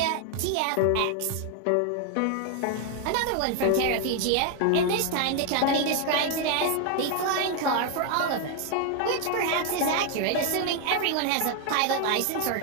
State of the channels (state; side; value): different; both; correlation 0.01